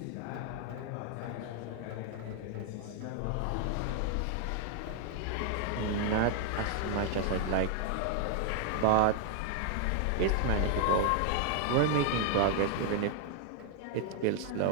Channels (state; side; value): different; both; correlation 0.00